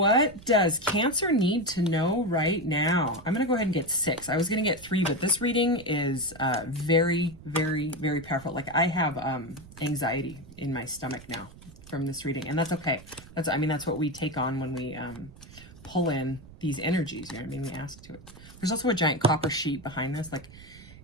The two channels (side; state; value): right; noise; rumble, 19 dB below the sound